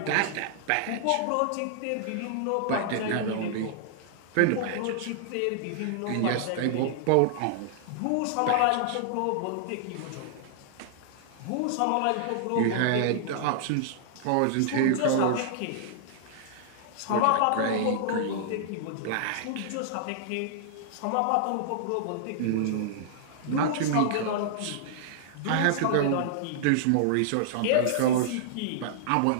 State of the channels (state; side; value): different; both; correlation -0.01